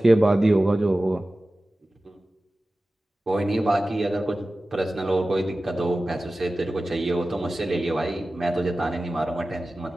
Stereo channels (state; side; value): normal; both; correlation 0.96